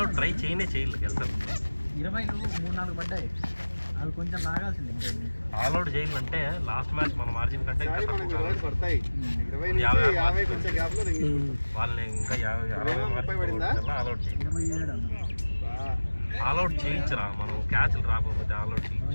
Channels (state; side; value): inverted; both; correlation -1.00